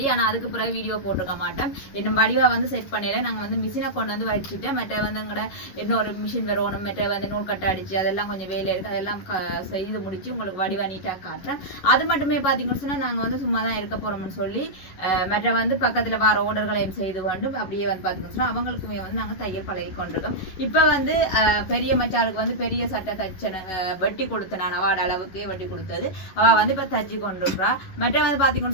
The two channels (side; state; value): right; late; 11 ms